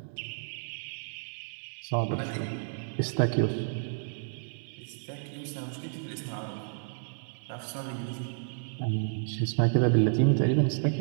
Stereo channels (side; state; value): left; silent; 57 dB below the other